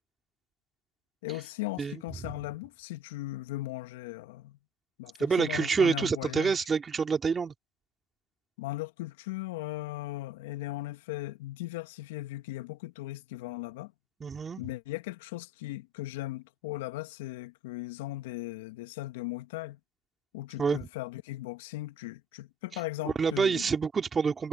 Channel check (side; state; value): both; normal; correlation 0.59